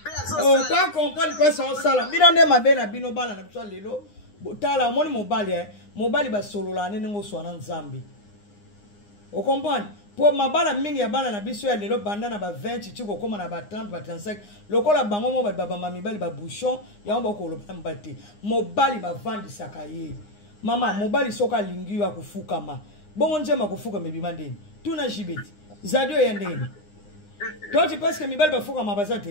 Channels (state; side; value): late; right; 9.7 ms